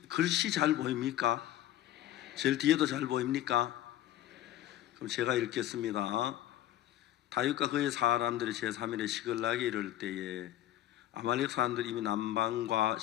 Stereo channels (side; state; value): right; quieter; 13.5 dB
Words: 글씨 잘 보입니까? 제일 뒤에도 잘 보입니까? 그럼 제가 읽겠습니다. 다윗과 그의 사람들이 제3일에 시글락에 이를 때에 아말렉 사람들이 이미 남방과